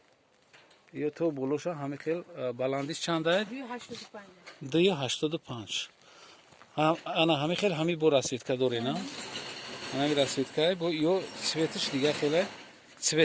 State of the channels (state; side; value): identical; both; correlation 1.00